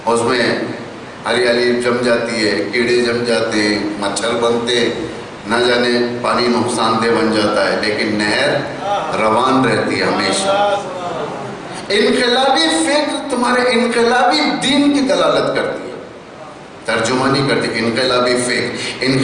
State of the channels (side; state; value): both; identical; correlation 1.00